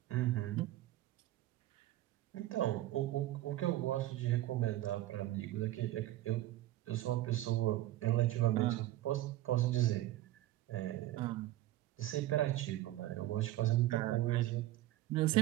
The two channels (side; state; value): left; quieter; 15.3 dB